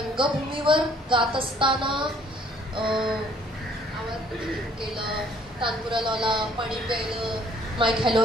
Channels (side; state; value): both; normal; correlation 0.61